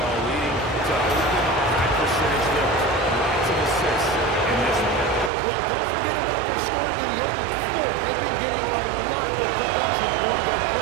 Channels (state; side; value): drops out; left; at 5.3 s